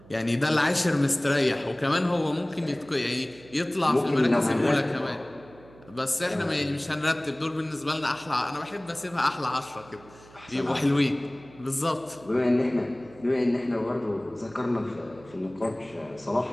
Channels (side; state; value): right; noise; hum, 23 dB below the sound